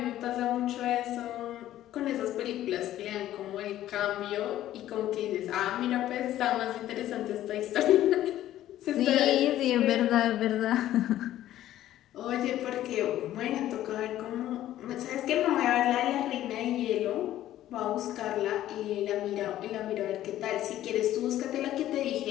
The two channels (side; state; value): right; quieter; 13.2 dB